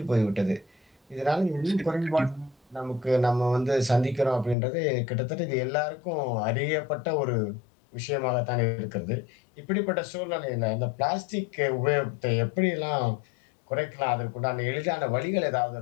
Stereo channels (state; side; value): drops out; right; at 4.5 s